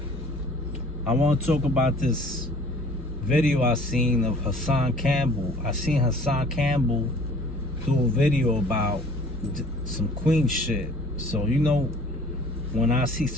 I want to talk about this video I seen of Hassan Campbell. I seen Hassan Campbell do a video about some Queen shit. So, you know, when I see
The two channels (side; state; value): both; normal; correlation 0.51